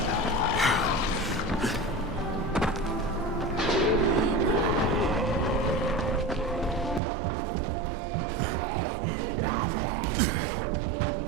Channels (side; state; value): left; drops out; at 7.0 s